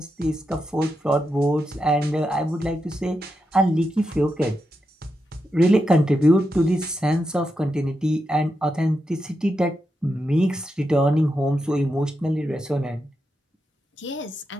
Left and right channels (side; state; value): both; normal; correlation 0.86